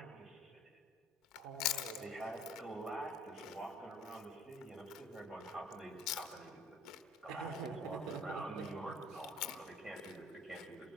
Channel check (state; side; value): normal; both; correlation 0.53